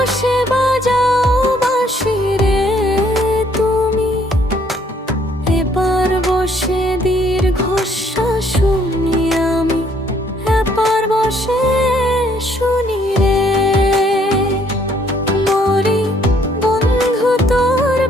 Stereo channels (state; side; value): normal; both; correlation 0.66